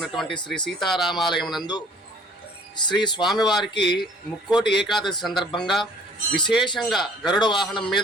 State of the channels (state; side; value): normal; both; correlation 0.54